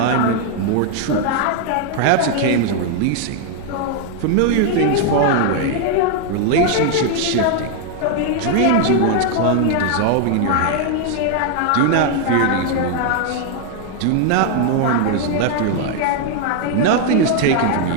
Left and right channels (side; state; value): both; different; correlation 0.00